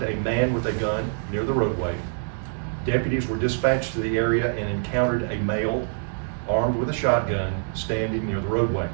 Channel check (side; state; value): left; silent; digital silence